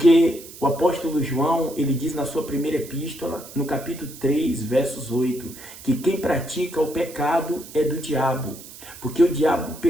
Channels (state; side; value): noise; right; hiss, 16 dB below the sound